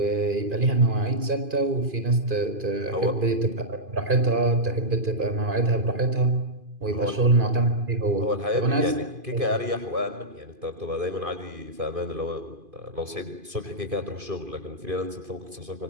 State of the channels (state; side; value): late; left; 2.5 ms